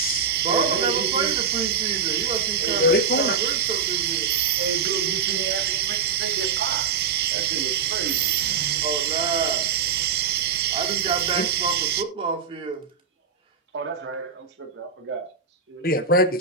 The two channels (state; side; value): quieter; left; 5.9 dB